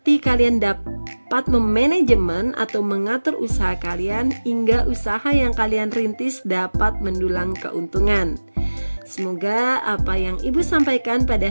kalian dapat memanajemen atau mengatur usaha kalian hingga usaha yang kalian rintis dapat mendulang keuntungan. Semoga apa yang Ibu sampaikan pada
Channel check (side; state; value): both; inverted; correlation -1.00